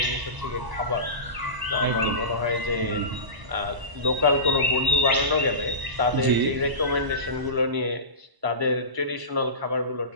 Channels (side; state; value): left; late; 1.0 ms